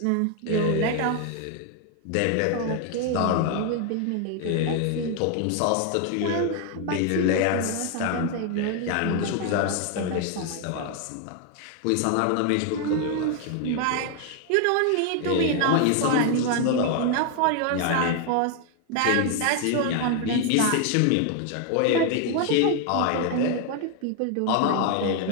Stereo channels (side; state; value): both; different; correlation 0.00